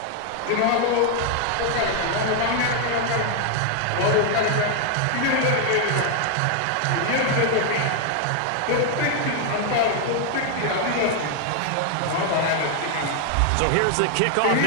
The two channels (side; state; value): both; different; correlation 0.00